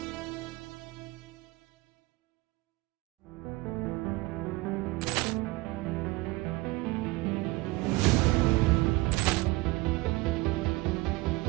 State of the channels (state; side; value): quieter; left; 21.5 dB